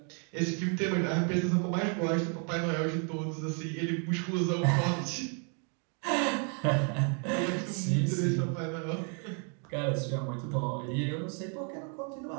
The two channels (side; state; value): left; quieter; 40.0 dB